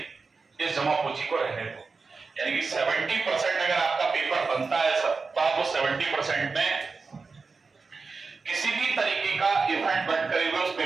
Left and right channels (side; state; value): left; quieter; 4.4 dB